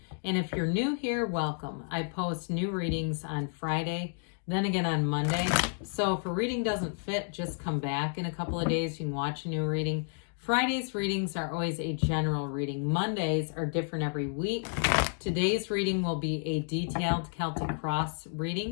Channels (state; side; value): silent; right; 57 dB below the other